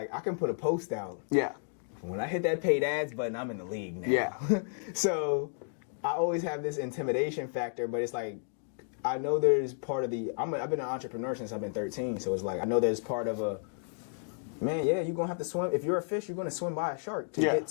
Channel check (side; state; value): right; silent; digital silence